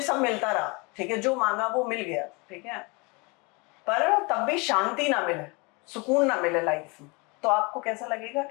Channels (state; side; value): quieter; right; 28.3 dB